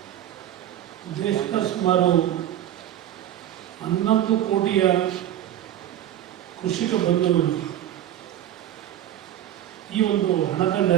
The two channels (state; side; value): quieter; left; 11.8 dB